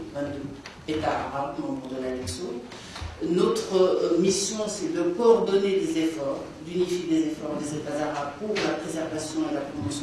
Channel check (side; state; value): both; identical; correlation 1.00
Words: 22 États arabes membres de l'ALEXO. Notre mission, c'est de coordonner des efforts, d'unifier des efforts des États arabes pour la préservation et la